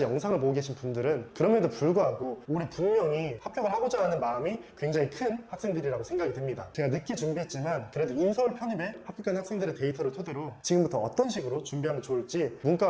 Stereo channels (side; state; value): both; identical; correlation 1.00